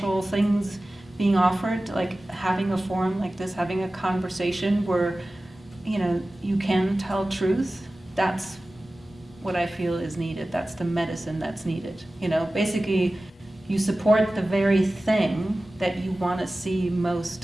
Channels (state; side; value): normal; both; correlation 0.96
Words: things being offered, like having a forum like this, having a conversation where, you can tell truth, that's what I feel is needed. That's the medicine that's needed. Basically, you support the very thing that you want to see